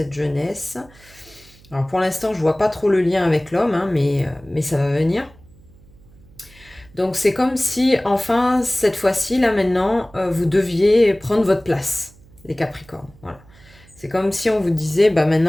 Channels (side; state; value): right; noise; hum, 26 dB below the sound